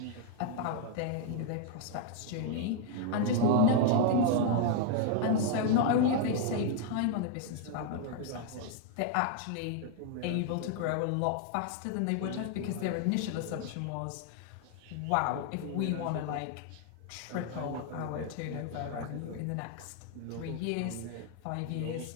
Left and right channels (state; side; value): different; both; correlation 0.00